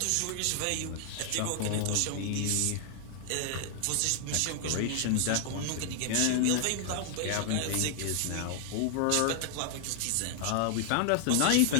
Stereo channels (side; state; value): both; different; correlation 0.00